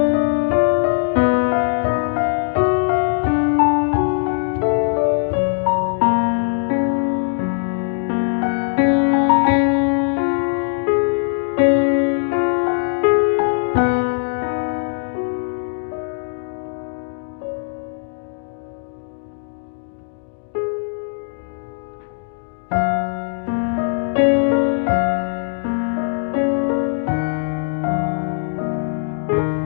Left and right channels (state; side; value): silent; right; digital silence